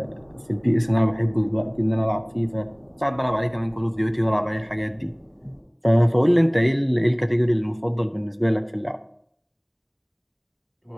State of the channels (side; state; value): both; identical; correlation 1.00